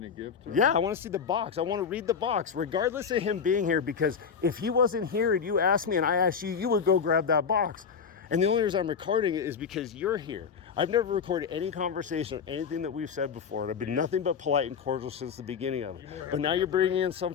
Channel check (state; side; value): quieter; right; 6.5 dB